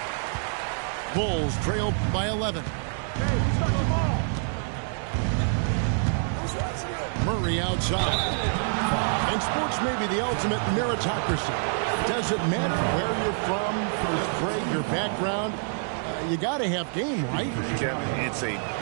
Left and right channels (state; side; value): silent; left; 60 dB below the other